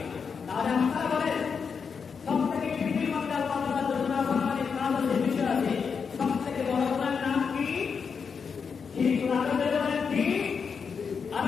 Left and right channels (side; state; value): right; quieter; 6.0 dB